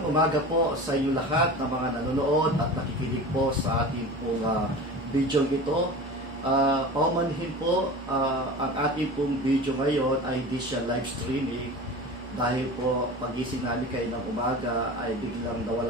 umaga po sa inyo lahat ng mga nanonood at nakikinig po sa ating pong video ito. Paumanhin po, ang ating pong video ngayon ay hindi siya live streaming dahil po pagising namin kayo ng umaga ay biglang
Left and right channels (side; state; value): both; normal; correlation 0.34